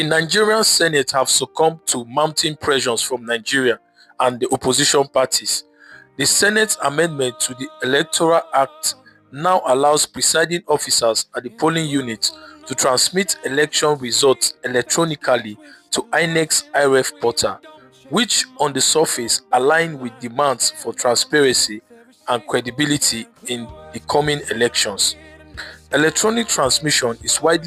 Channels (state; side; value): identical; both; correlation 1.00